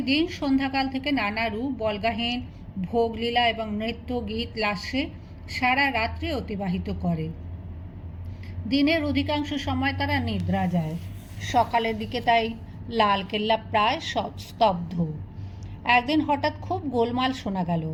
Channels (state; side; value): identical; both; correlation 1.00